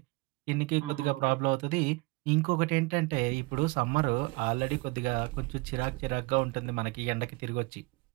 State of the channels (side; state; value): left; quieter; 25.5 dB